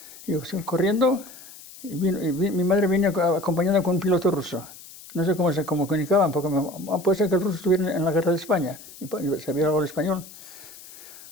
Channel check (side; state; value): left; noise; hiss, 18 dB below the sound